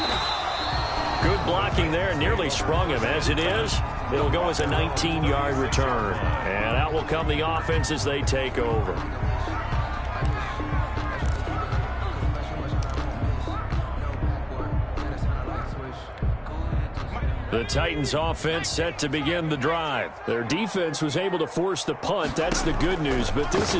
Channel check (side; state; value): both; identical; correlation 1.00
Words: Good blocking there, nearly sprung him. As it is, it'll go as a 19-yard return. And out will come the offense as they take over. The Titans offense set to begin the drive. Their defense was able to force the punt. That's the good news, but this